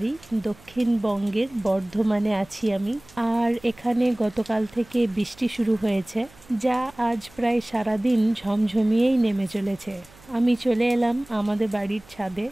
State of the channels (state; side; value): noise; right; hum, 25 dB below the sound